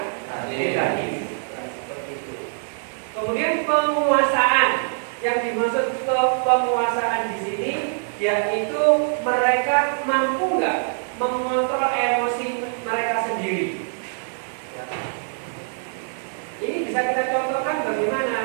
negatif. Kemudian penguasaan, yang dimaksud penguasaan di sini yaitu mereka mampu nggak mengontrol emosi mereka sendiri. Ya. Ini bisa kita contohkan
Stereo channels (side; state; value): left; silent; digital silence